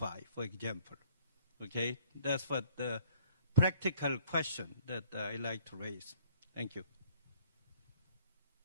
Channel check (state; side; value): inverted; both; correlation -0.58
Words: for example. Okay, that's what the practical question that I like to raise. Thank you.